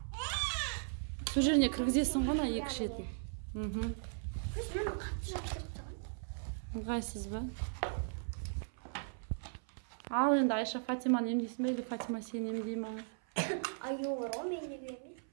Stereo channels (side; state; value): left; silent; 53 dB below the other